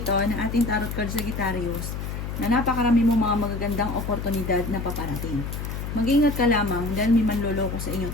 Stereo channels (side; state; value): left; noise; hum, 5 dB below the sound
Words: ng ating tarot card Sagittarius na napakarami mo mga magagandang oportunidad na paparating. Mag-ingat ka lamang dahil may manloloko sa inyo